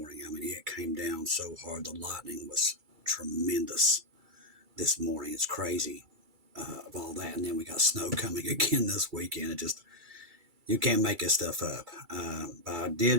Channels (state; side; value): late; left; 2.3 ms